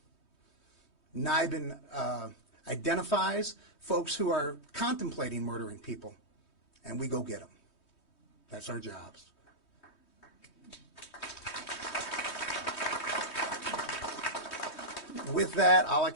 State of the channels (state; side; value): late; right; 3.2 ms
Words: NIBIN identifies folks who are contemplating murdering people, and we go get them. That's our jobs. With that, all I